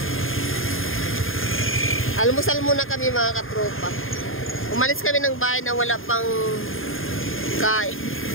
Almusal muna kami mga katropa. Umalis kami ng bahay na wala pang kain.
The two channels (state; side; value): late; right; 0.59 ms